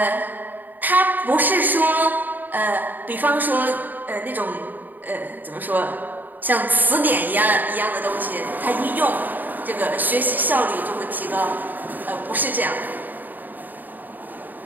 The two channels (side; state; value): left; late; 0.087 ms